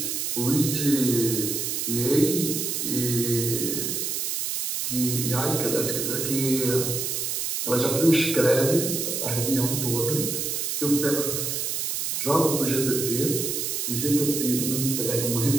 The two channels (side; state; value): right; noise; hiss, 1 dB below the sound